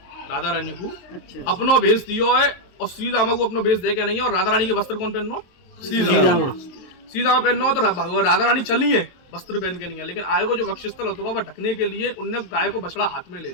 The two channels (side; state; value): right; late; 23 ms